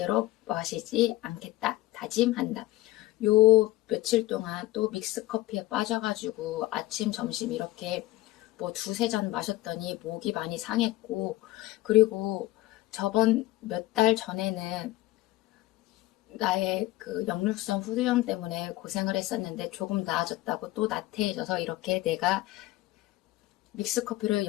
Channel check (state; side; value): quieter; right; 17.4 dB